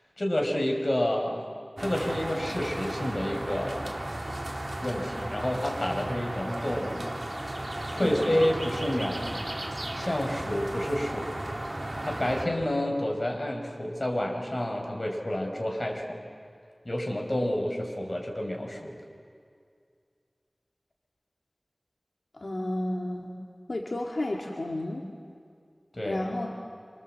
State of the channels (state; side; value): normal; both; correlation 0.98